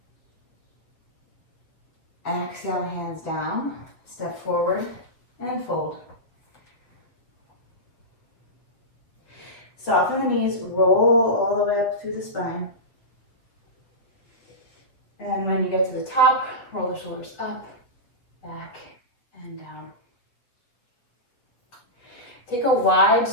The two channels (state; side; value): late; right; 7.9 ms